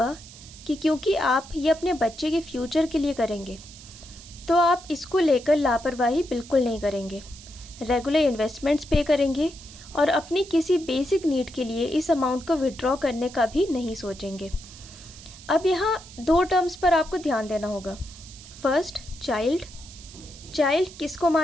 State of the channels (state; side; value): noise; right; hiss, 18 dB below the sound